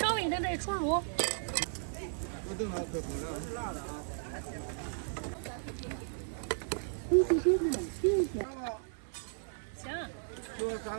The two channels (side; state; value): left; silent; digital silence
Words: 微等待出炉。我等它可不了，是辣的啊。行。就3